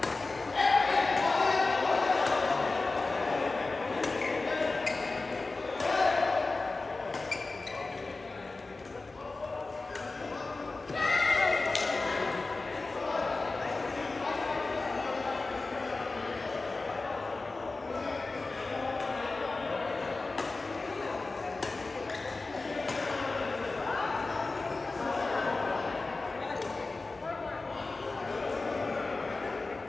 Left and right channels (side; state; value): right; quieter; 3.5 dB